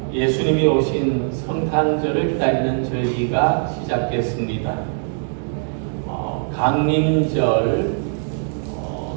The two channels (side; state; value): left; silent; digital silence